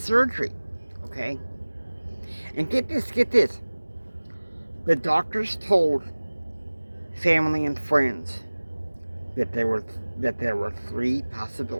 okay? And get this. The doctors told family and friends that there were 3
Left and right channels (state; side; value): inverted; both; correlation -1.00